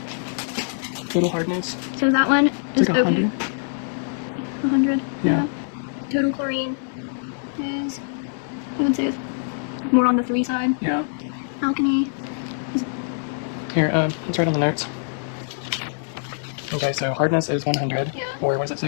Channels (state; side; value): silent; right; 63 dB below the other